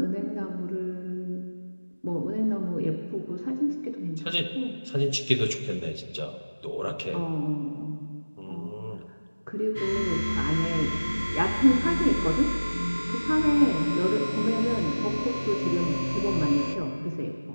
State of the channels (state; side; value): inverted; both; correlation -1.00